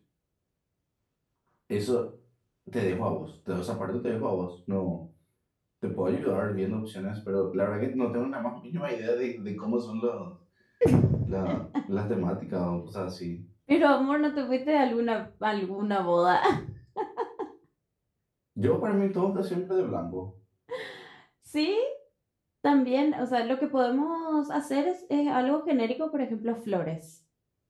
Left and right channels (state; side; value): identical; both; correlation 1.00